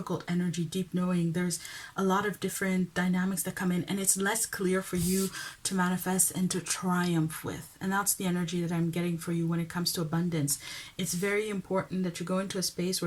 energy. Deep Knowing, there's a lot of different dynamics that come in, and it's less clear for you to manifest and to triumph with. And that's the energy that I'm getting for you when it comes to abundance. It's very important that you go into a space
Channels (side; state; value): both; identical; correlation 1.00